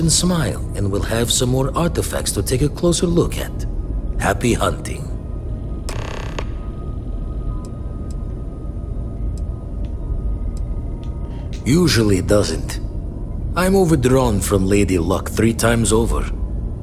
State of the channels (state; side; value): identical; both; correlation 1.00